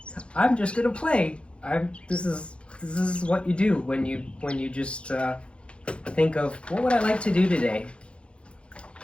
I'm just gonna play. This is what you do when you just think of what would I like to do today,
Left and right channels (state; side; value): late; right; 0.058 ms